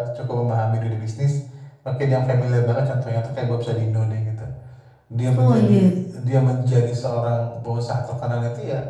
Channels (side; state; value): both; identical; correlation 1.00